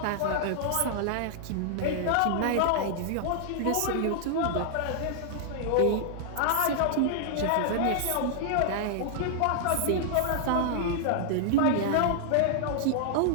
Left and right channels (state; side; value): different; both; correlation -0.01